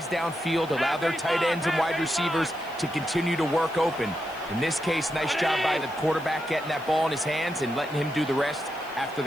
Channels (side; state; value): left; noise; hiss, 24 dB below the sound